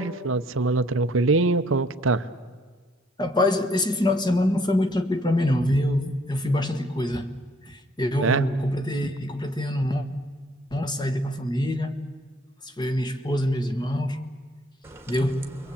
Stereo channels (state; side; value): normal; both; correlation 0.64